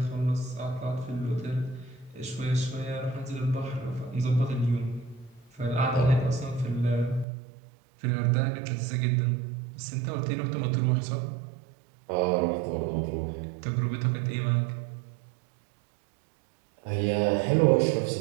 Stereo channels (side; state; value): left; drops out; at 7.2 s